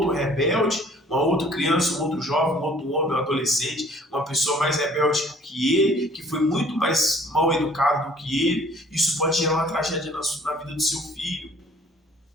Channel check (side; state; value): both; normal; correlation 0.55